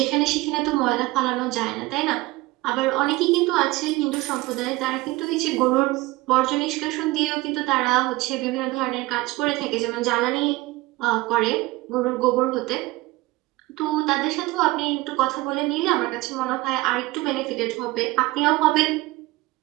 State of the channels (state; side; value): quieter; left; 20.2 dB